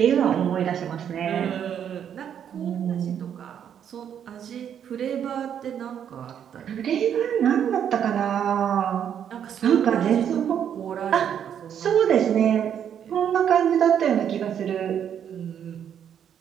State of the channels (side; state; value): left; quieter; 8.9 dB